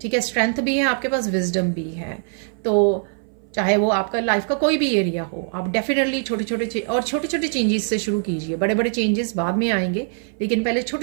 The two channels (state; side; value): silent; left; 58 dB below the other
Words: है। स्ट्रेंथ भी है आपके पास, विजडम भी है। तो चाहे वो आपका लाइफ का कोई भी एरिया हो, आप डेफिनेटली छोटे छोटे चेंजेस से शुरू कीजिए। बड़े बड़े चेंजेस बाद में आएंगे, लेकिन पहले